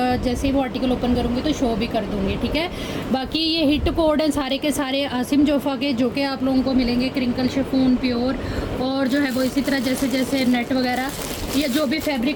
जैसे ही वो आर्टिकल ओपन करूँगी तो शो भी कर दूँगी। ठीक है, बाकी ये हिट कोड हैं सारे के सारे आसिम जोफ़ा के, जो कि आप लोगों को मिलेंगे क्रिंकल शिफॉन प्योर, और जो है वो इसी तरह जैसे जैसे नेट वगैरह या जो भी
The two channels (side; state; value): both; identical; correlation 1.00